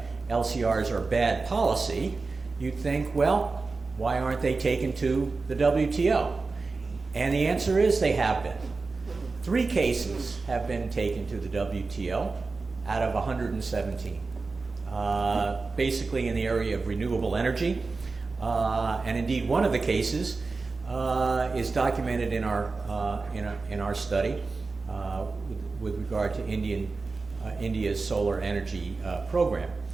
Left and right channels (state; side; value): quieter; left; 4.0 dB